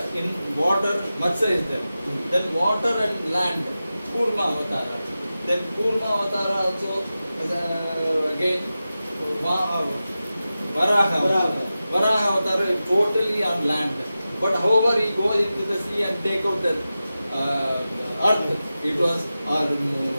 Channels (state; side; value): inverted; both; correlation -0.94